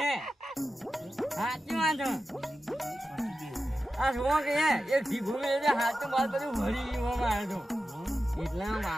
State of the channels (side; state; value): both; normal; correlation 0.92